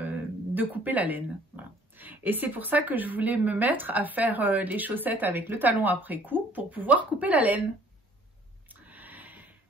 couper la laine. Voilà. Et c'est pour ça que je voulais me mettre à faire les chaussettes avec le talon après coup pour pouvoir couper la laine.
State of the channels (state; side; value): normal; both; correlation 0.56